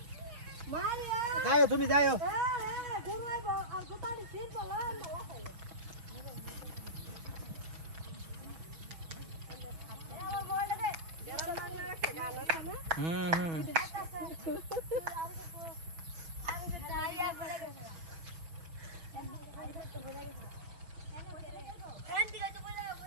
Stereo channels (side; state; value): left; late; 6.2 ms